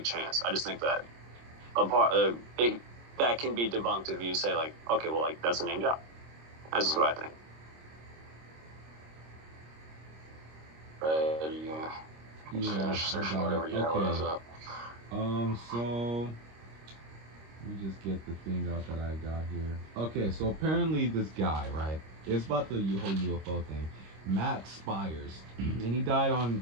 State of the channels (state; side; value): late; left; 26 ms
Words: chance. I just think that that can be debunked if you say like, okay, well, like that's a name job. That's just what I think. Yeah, I got it. Okay. So let me just get the thing out that I got here. Okay, so apparently this guy, right? It's about the whole UFO thing. Matt Spires, and he died on